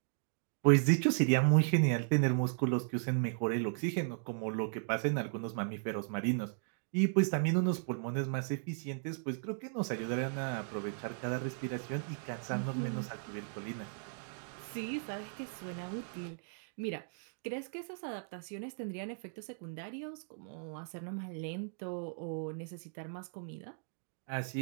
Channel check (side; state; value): left; silent; digital silence